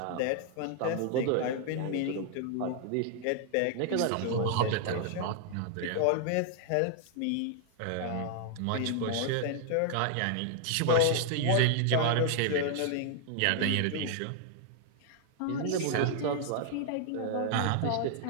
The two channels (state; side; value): different; both; correlation 0.00